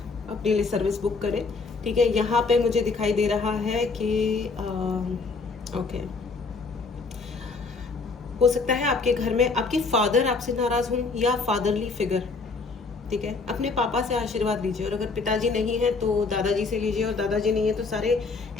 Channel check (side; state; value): right; quieter; 4.3 dB